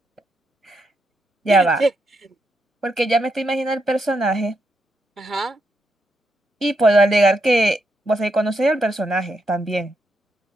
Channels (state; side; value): normal; both; correlation 0.81